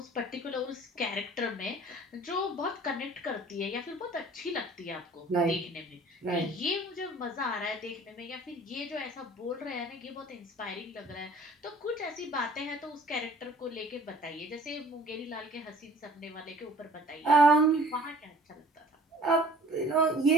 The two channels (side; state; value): both; normal; correlation 0.51